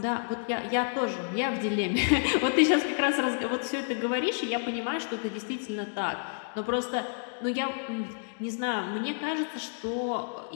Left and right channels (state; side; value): silent; right; digital silence